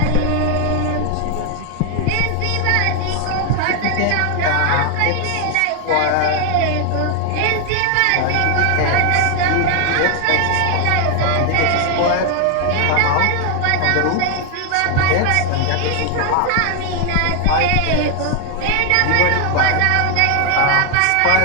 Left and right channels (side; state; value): both; different; correlation 0.01